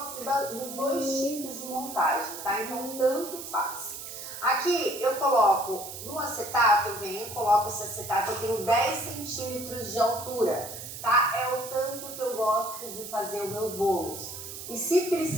dos dois tipos de montagem, tá? Então tanto faz. Aqui eu coloco no acetato, coloco esse acetato, eu tenho 10 centímetros de altura, tá? É o tanto que eu gosto de fazer os meus bolos. E se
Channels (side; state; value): right; noise; hiss, 10 dB below the sound